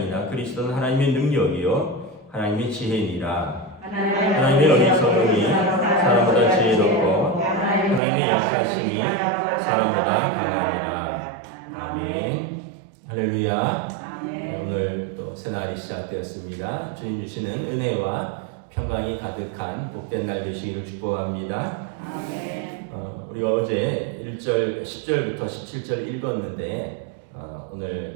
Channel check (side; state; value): left; drops out; at 8.0 s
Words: 그리스도는 하나님의 능력이요 하나님의 지혜니라. 하나님의 어리석음이 사람보다 지혜롭고 하나님의 약하심이 사람보다 강하니라. 아멘. 할렐루야. 오늘 또 새날이 시작되었습니다. 주님 주시는 은혜와 평강이 가득한 복된 날 되시기를 축복합니다. 우리가 어제 1절, 10절부터 17절 읽었는데 오늘